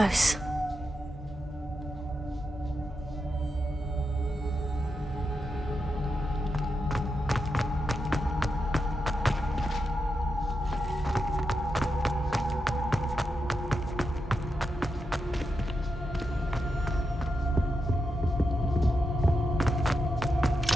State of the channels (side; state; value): both; normal; correlation 0.87